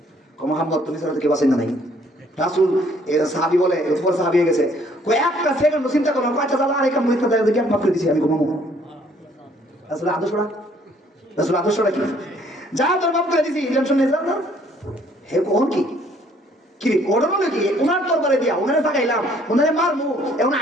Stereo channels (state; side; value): normal; both; correlation 0.62